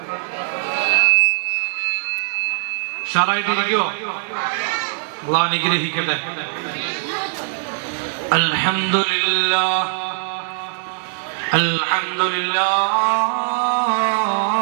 ഷറായിട്ടിരിക്കോ? അല്ലാഹു അനുഗ്രഹിക്കട്ടെ. അൽഹംദുലില്ലാഹ്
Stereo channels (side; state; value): left; silent; 60 dB below the other